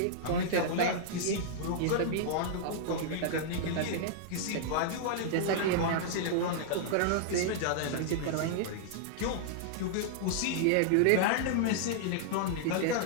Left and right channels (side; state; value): both; different; correlation -0.01